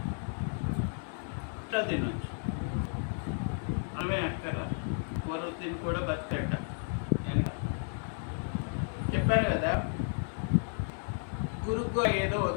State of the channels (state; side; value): silent; right; 56 dB below the other